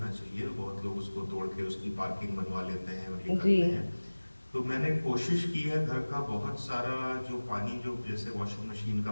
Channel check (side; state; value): both; inverted; correlation -1.00